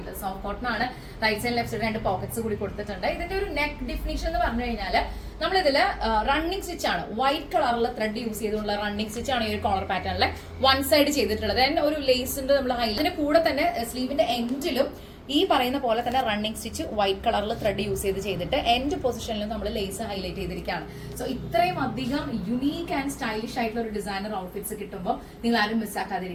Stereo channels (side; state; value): both; identical; correlation 1.00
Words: സോഫ്റ്റ് കോട്ടൺ ആണ്. Right side left side 2 pockets കൂടി കൊടുത്തിട്ടുണ്ട്. ഇതിന്റെ ഒരു നെക്ക് ഡിഫിനിഷൻ എന്ന് പറഞ്ഞു കഴിഞ്ഞാൽ നമ്മളിതില് റണ്ണിങ് സ്റ്റിച്ച് ആണ്. വൈറ്റ് കളറിൽ ത്രെഡ് യൂസ് ചെയ്തുള്ള റണ്ണിങ് സ്റ്റിച്ച് ആണ് ഈ ഒരു കോളർ പാറ്റേണിലെ വൺ സൈഡ് ചെയ്തിട്ടുള്ളത്. ഒരു ലേസിന്റെ നമ്മൾ ഇതിന്റെ കൂടെ തന്നെ സ്ലീവിന്റെ എൻഡിലും ഈ പറയുന്ന പോലെ തന്നെ റണ്ണിങ് സ്റ്റിച്ച് വൈറ്റ് കളറിൽ ത്രെഡ് യൂസ് ചെയ്തിട്ട് എൻഡ് പൊസിഷനിലും നമ്മൾ ലേസ് ഹൈലൈറ്റ് ചെയ്തിരിക്കുകയാണ്. സോ ഇത്രയും അധികം യുണീക്ക് ആൻഡ് സ്റ്റൈലിഷ് ആയിട്ടുള്ള ഒരു ഡിസൈനർ ഔട്ട്ഫിറ്റ്സ് കിട്ടുമ്പോൾ നിങ്ങൾ ആരും